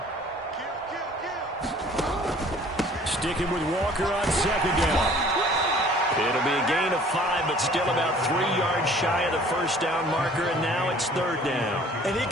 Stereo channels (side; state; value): both; normal; correlation 0.52